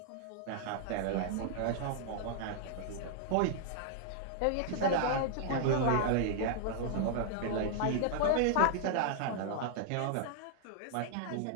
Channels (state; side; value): different; both; correlation -0.01